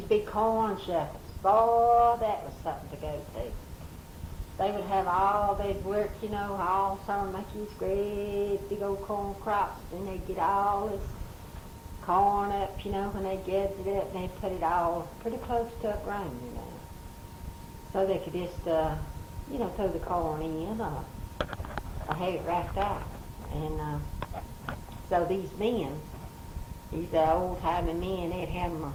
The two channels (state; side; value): identical; both; correlation 1.00